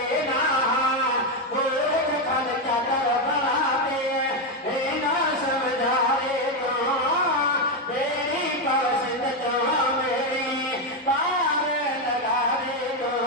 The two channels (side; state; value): both; normal; correlation 0.06